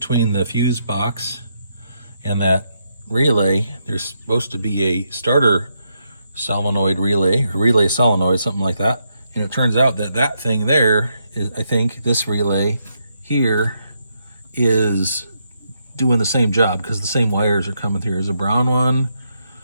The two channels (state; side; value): inverted; both; correlation -0.79